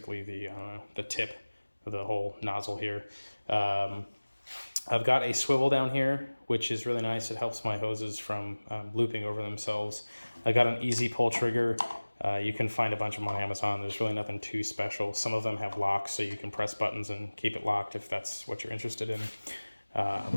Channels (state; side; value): inverted; both; correlation -1.00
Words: the tip of the whole nozzle here. I've got a swivel down here, which is really nice. It helps my hoses from looping over themselves. I got an easy pull trigger. You can find a bunch of them on Amazon. There's really nothing too special. Some of them have locks, so you can press buttons and keep it locked if that's what you're interested in.